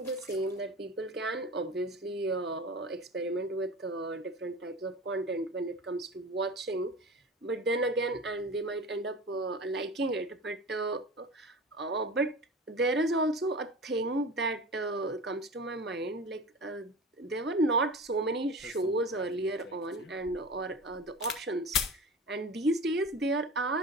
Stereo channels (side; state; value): both; normal; correlation 0.33